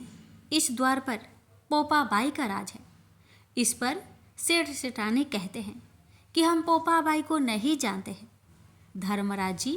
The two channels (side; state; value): both; identical; correlation 1.00